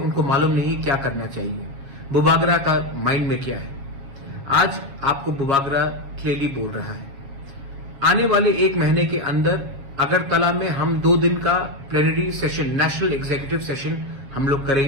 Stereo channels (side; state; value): left; late; 7.3 ms